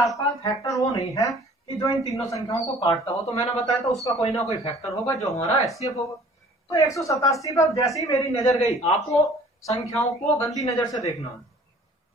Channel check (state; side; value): normal; both; correlation 0.52